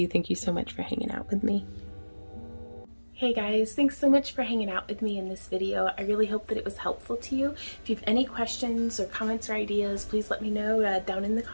Thank you so much for hanging out with me. Hey guys, thanks so much for hanging out with me in this video. I really hope that it was helpful to you. If you have any questions or comments or ideas, please let me know down in the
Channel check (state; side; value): inverted; both; correlation -1.00